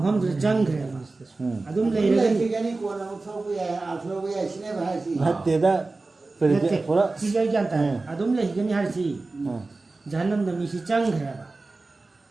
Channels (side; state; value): left; quieter; 3.5 dB